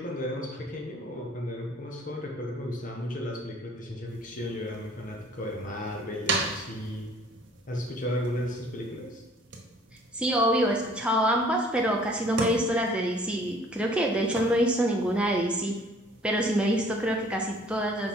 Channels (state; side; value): normal; both; correlation 0.55